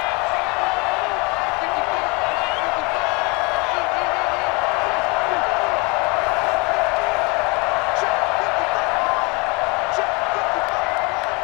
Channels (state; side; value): quieter; right; 28.4 dB